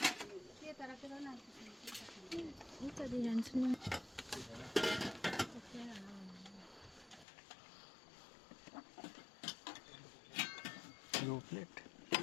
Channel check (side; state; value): right; drops out; at 7.2 s